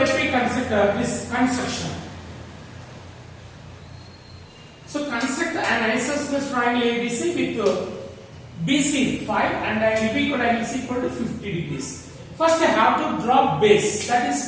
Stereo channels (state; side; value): identical; both; correlation 1.00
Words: me consider this construction. So construct an isosceles triangle ABC with BC 5 and angle B angle C equal to 50 degrees. First I have to draw base, that